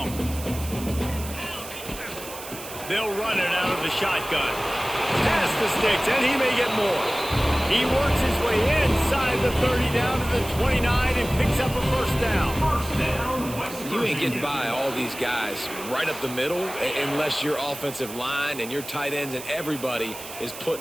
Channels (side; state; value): right; noise; hiss, 12 dB below the sound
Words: They'll run it out of the shotgun. Past the sticks, and he may get more. He works his way inside the 30 down to the 29 and picks up a first down. You ain't getting by all these guys right up the middle unless your offensive line and your tight ends and everybody is